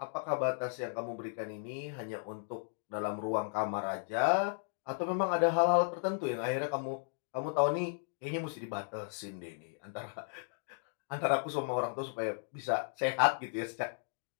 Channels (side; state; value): right; silent; digital silence